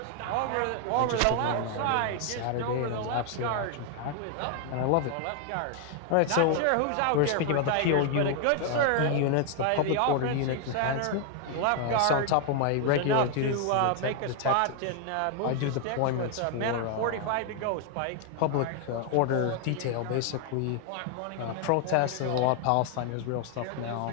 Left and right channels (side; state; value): both; different; correlation 0.00